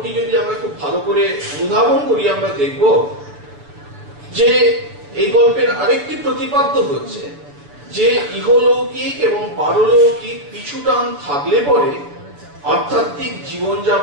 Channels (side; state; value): left; late; 6.9 ms